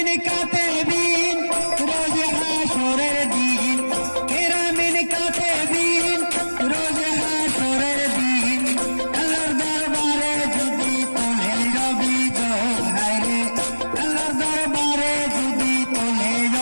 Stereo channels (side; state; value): both; inverted; correlation -1.00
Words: কাতেবিন রোজ হাসরের দিন, কেরামিন কাতেবিন রোজ হাসরের দিন, আল্লাহর দরবারে যদি তোলে অভিযোগ, হায়রে আল্লাহর দরবারে যদি তোলে